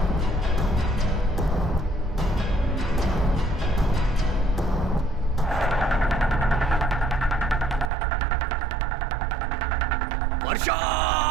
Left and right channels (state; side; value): drops out; left; at 7.9 s